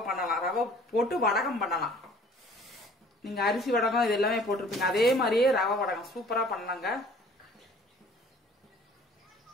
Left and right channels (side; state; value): both; normal; correlation 0.52